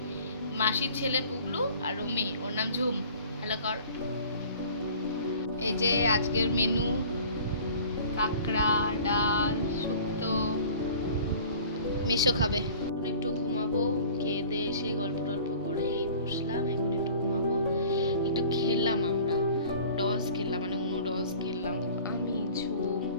মাসির ছেলে পুগলু, আর ও মেয়ে, ওর নাম ঝুম। হ্যালো কর। এই যে আজকের মেনু, কাঁকড়া, ডাল, শুক্তো। মেশো খাবে। এখন একটু ঘুমাবো, খেয়ে দিয়ে এসে গল্প টল্প করে এই বসলাম, এখন একটু ঘুমাবো। একটু খেললাম, আমরা ডস খেললাম, মানে উনো ডস খেললাম, আমি ঝুম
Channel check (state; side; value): inverted; both; correlation -0.46